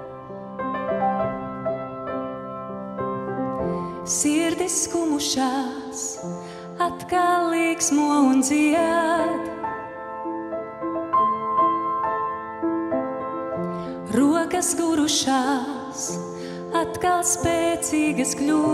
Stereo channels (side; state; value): both; identical; correlation 1.00